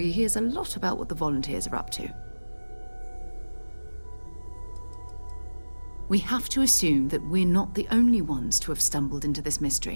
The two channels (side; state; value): both; inverted; correlation -1.00